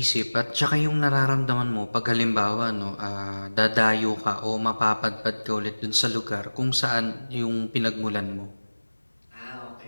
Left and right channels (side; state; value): both; inverted; correlation -1.00